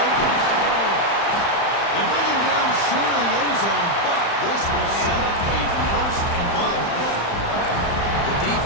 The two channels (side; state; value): right; late; 35 ms